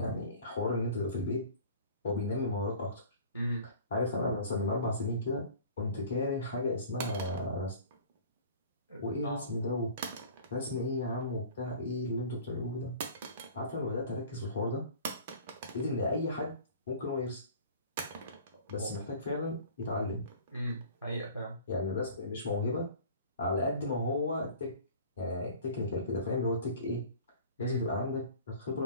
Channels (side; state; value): both; inverted; correlation -0.44